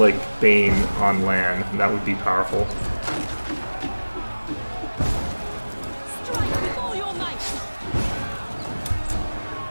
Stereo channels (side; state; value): both; inverted; correlation -1.00